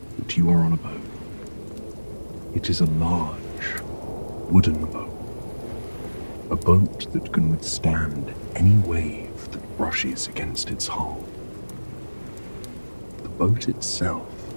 that you are on a boat. It is a large wooden boat, a boat that can withstand any wave that brushes against its hull. The boat itself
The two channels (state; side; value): inverted; both; correlation -1.00